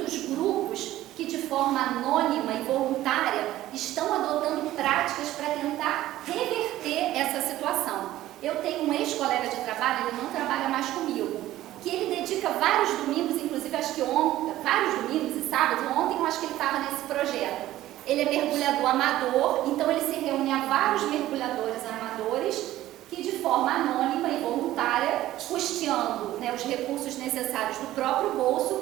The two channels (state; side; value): quieter; left; 14.7 dB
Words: grupos que, de forma anônima e voluntária, estão adotando práticas para tentar reverter essa situação. Eu tenho um ex-colega de trabalho, ele não trabalha mais comigo, que ele dedica vários domingos, inclusive acho que ontem, vários domingos e sábados, ontem eu acho que ele estava nesse projeto. Ele é mergulhador amador, então ele se reúne a vários mergulhadores amadores que, de forma anônima e voluntária, custeando, né, os recursos necessários do próprio